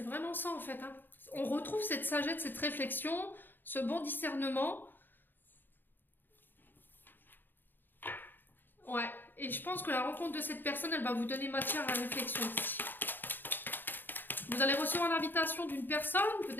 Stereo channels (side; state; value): right; late; 0.093 ms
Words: vraiment ça en fait. Hein. On retrouve cette sagesse, cette réflexion, ce bon discernement. Ouais, et je pense que la rencontre de cette personne, elle va vous donner matière à réflexion aussi. Vous allez recevoir l'invitation d'une personne,